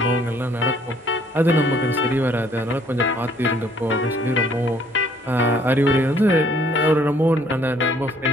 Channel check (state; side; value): normal; both; correlation 0.61